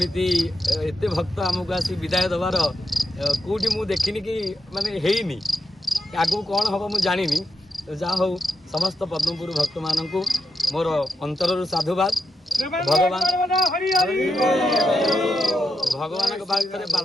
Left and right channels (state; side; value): normal; both; correlation 0.86